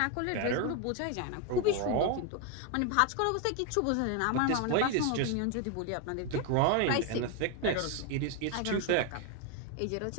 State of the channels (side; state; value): both; different; correlation 0.01